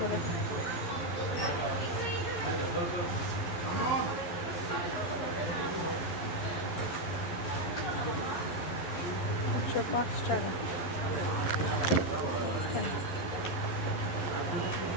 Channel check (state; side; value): late; right; 12 ms